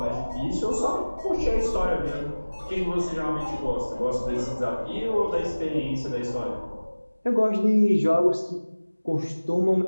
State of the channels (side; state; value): both; inverted; correlation -1.00